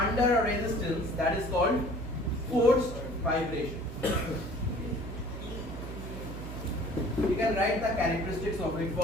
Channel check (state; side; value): noise; right; hum, 8 dB below the sound